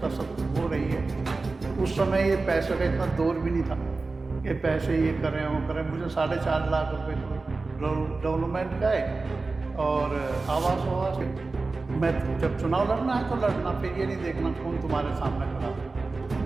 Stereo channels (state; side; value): quieter; left; 3.7 dB